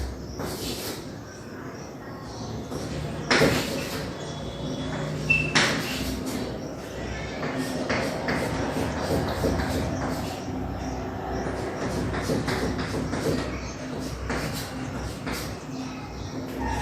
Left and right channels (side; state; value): both; identical; correlation 1.00